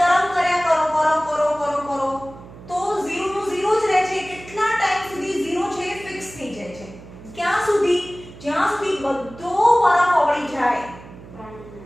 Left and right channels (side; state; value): right; noise; hum, 18 dB below the sound